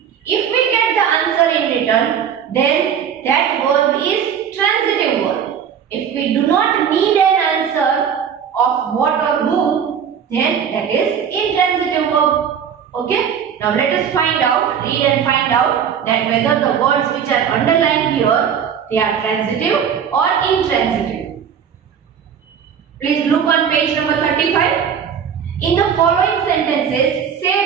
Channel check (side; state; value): left; quieter; 7.9 dB